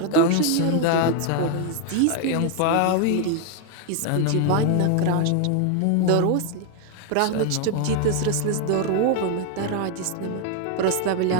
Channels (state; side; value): different; both; correlation 0.01